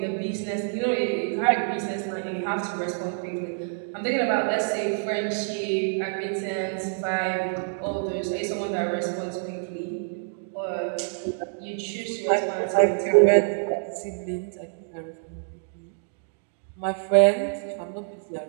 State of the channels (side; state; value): left; silent; digital silence